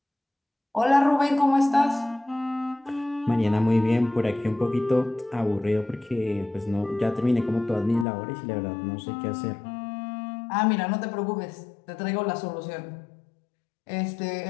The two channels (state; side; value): drops out; right; at 8.1 s